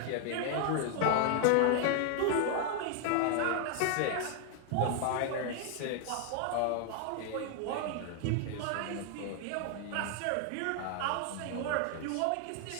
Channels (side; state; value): both; different; correlation 0.00